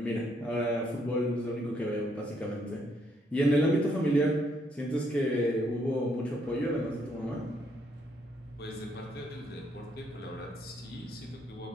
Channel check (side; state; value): both; normal; correlation 0.72